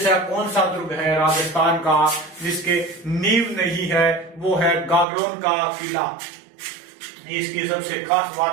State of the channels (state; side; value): drops out; left; at 5.1 s